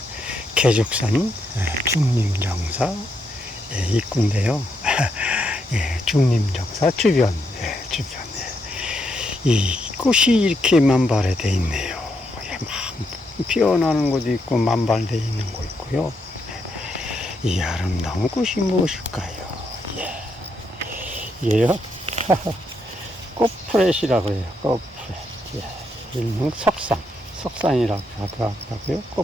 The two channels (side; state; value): both; normal; correlation 0.79